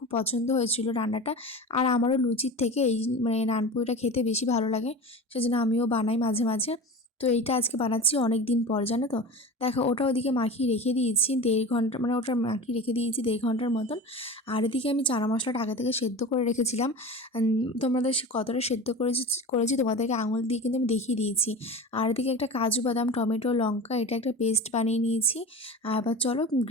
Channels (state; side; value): normal; both; correlation 0.32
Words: পছন্দ হয়েছিল রান্নাটা, আর আমারও লুচির থেকে এই মানে নানপুরিটা খেতে বেশি ভালো লাগে, সেজন্য আমিও বানাই মাঝে মাঝে। তো এইটা আজকে বানাচ্ছি অনেক দিন পর, জানো তো। দেখো ওটা ওদিকে মাখিয়ে রেখে দিয়েছি 1.5 ঘন্টা, মানে ওটা মাখিয়ে রেখে দিয়েছি 1.5 ঘন্টার মতন। আর এদিকে আমি চানা মশলাটা আগে থেকে সেদ্ধ করে রেখেছিলাম। তোমাদের কতটা সেদ্ধ করেছি তোমাদেরকে আঙুল দিয়ে কিন্তু আমি দেখিয়ে দিয়েছি। আর এদিকে একটা কাজু বাদাম টমেটো লঙ্কা এটা একটা পেস্ট বানিয়ে নিয়েছি। আর এবার চলো